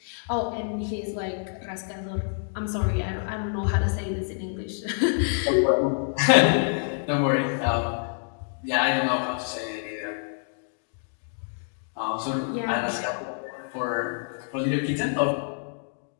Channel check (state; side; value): silent; right; digital silence